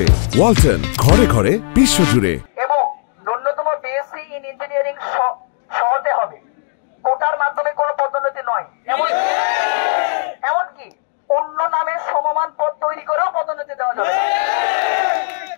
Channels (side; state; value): right; silent; digital silence